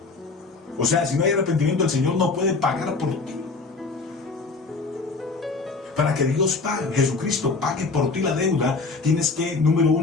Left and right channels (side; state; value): right; quieter; 4.0 dB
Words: O sea, si no hay arrepentimiento, el Señor no puede pagar por ti. Para que Dios pague, Jesucristo pague por ti la deuda, tienes que, número